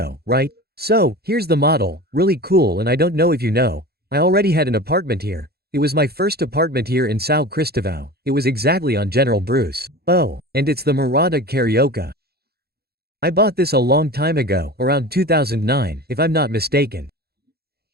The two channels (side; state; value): left; late; 0.46 ms